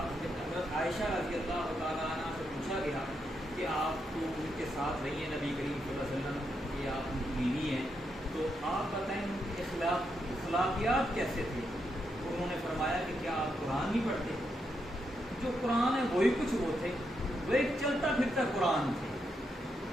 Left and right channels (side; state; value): both; normal; correlation 0.81